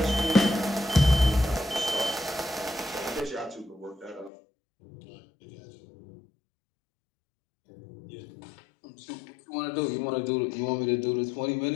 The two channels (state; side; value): drops out; right; at 4.3 s